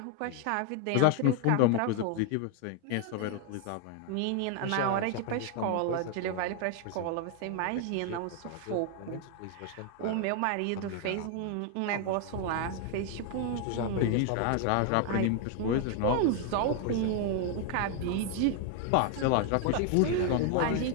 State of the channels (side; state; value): both; different; correlation 0.00